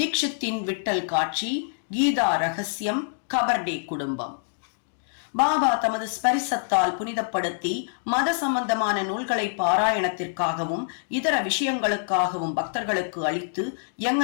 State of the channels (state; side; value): silent; right; digital silence